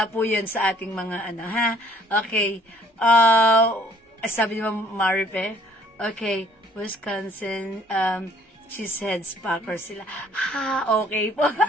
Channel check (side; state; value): both; normal; correlation 0.59